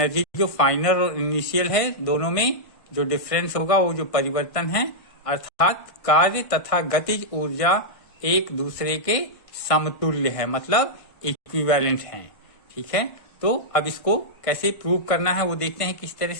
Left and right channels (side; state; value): right; late; 1.5 ms